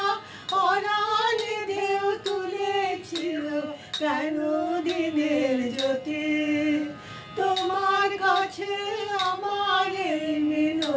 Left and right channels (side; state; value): both; identical; correlation 1.00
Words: অরানে ঢেউ তুলেছিল কেন দিনের জ্যোতি। তোমার কাছে আমার এই